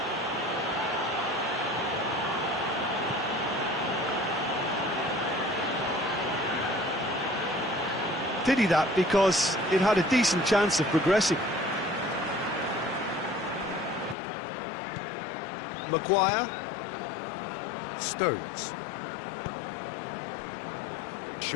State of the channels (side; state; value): right; drops out; at 14.2 s